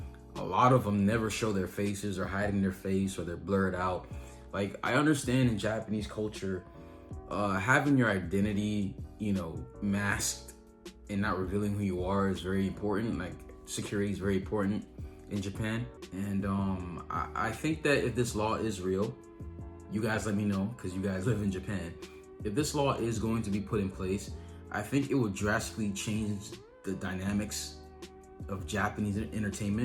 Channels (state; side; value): identical; both; correlation 1.00